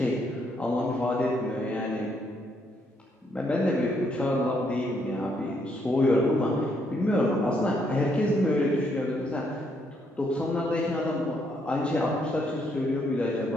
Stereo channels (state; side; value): normal; both; correlation 0.73